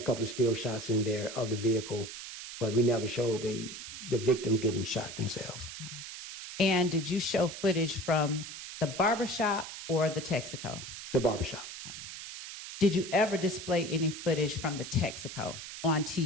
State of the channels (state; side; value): noise; right; hiss, 10 dB below the sound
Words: couple of still shots in there of the vehicle, but we never showed the victims getting shot themselves. And did you show footage from the barbershop or the Texaco? The barbershop. Did you ever display any footage from the Texaco on